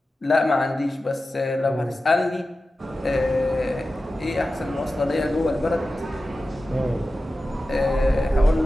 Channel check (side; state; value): both; normal; correlation 0.94